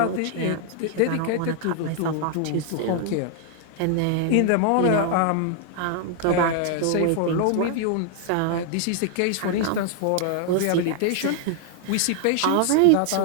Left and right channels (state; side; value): different; both; correlation 0.00